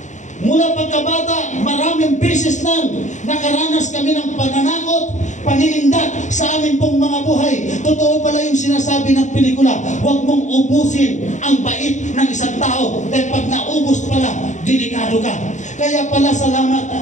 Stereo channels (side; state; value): right; late; 0.35 ms